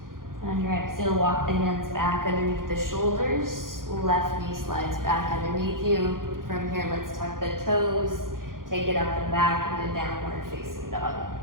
On your exhale, walk the hands back underneath the shoulders. Left knee slides back underneath you. From here, let's tuck the toes. Take it up and back into downward facing dog.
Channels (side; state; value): left; late; 0.91 ms